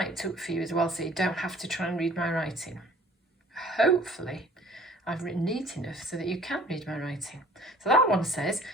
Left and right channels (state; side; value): normal; both; correlation 0.52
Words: up for you as well, so you don't have to try and read my writing. Hopefully, I've written neat enough so that you can read my writing. So that one says,